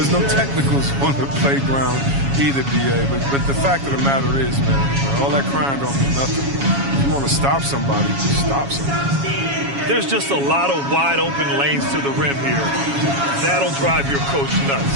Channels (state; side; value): late; left; 7.2 ms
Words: no technicals on the playground either, BA, but the fact of the matter is, man, all that crying don't mean nothing. If you want to stop somebody, just stop somebody. There's just a lot of wide open lanes to the rim here. That'll drive your coach